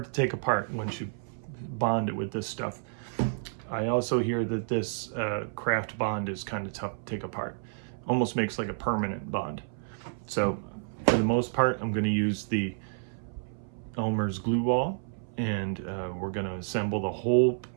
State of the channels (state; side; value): silent; left; 58 dB below the other